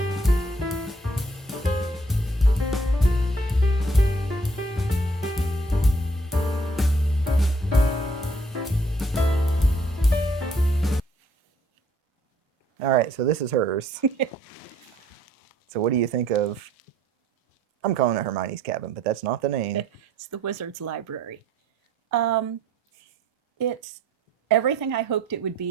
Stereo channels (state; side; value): normal; both; correlation 0.62